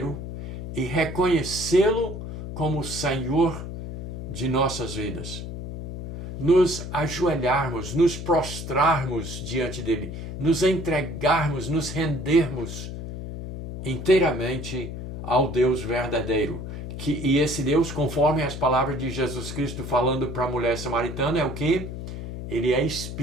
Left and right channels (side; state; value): left; noise; hum, 8 dB below the sound